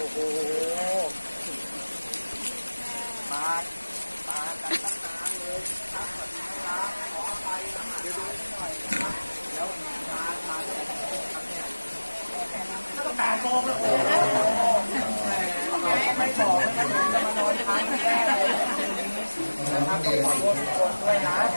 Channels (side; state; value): both; inverted; correlation -1.00